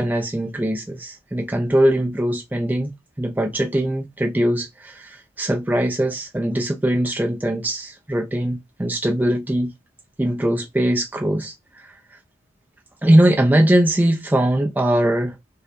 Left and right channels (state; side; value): normal; both; correlation 0.90